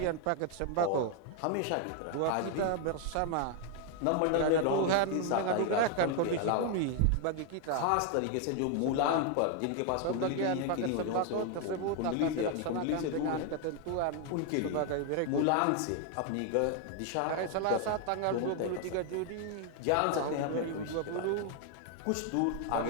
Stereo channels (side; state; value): both; different; correlation 0.00